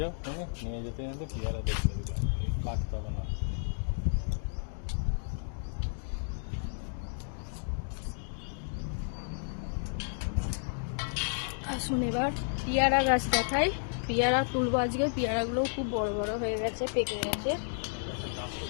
যাও, নিয়ে যেতে যেতে পেয়ারা দেখতে দিলাম, কাটতে হবে না। আসুন এবার পেয়ারা গাছ দেখাই। পেয়ারা তুলবো আজকে। পেয়ারাগুলো খুব বড় বড় হয়ে গেছে, পেকে গেছে।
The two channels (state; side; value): silent; right; digital silence